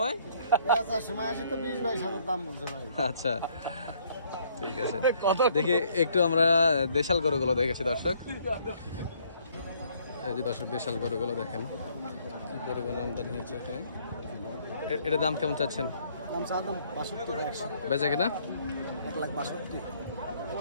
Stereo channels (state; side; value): inverted; both; correlation -0.64